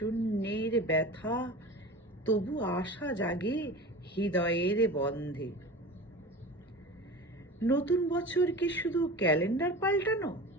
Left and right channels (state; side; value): normal; both; correlation 0.34